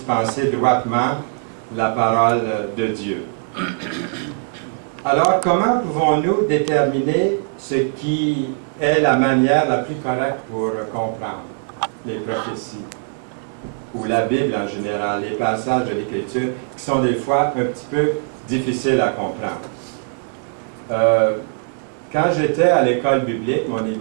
droitement la parole de Dieu. Alors, comment pouvons-nous déterminer ce qui est la manière la plus correcte pour comprendre les prophéties ou la Bible en général, les passages de l'Écriture qui sont des fois un petit peu difficiles à comprendre? Quand j'étais à l'école biblique, mon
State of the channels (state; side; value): silent; left; 59 dB below the other